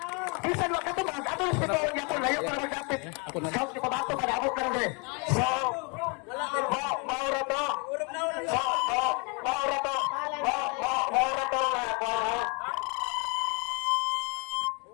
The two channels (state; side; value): quieter; right; 33.3 dB